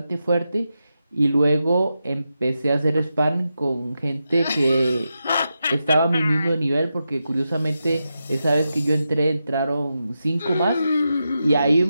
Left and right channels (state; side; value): inverted; both; correlation -0.88